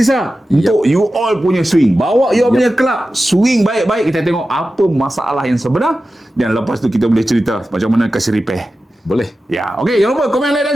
untuk you all punya swing. Bawa you all punya club. Swing baik-baik. Kita tengok apa masalah yang sebenar. Dan lepas tu kita boleh cerita macam mana kasih repair. Boleh. Okey, jangan lupa komen, like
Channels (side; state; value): both; normal; correlation 0.93